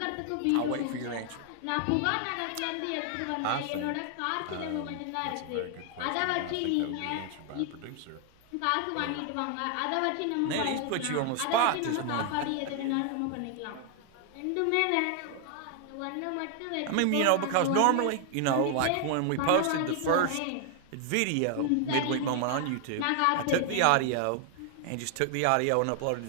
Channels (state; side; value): different; both; correlation 0.00